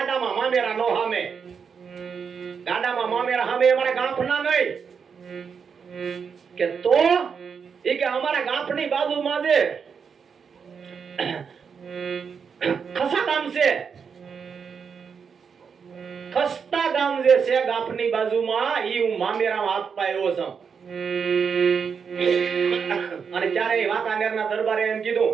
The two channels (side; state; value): left; quieter; 6.3 dB